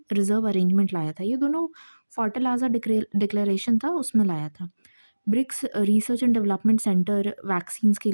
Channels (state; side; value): inverted; both; correlation -1.00